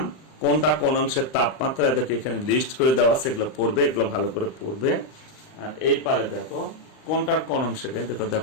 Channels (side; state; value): right; late; 39 ms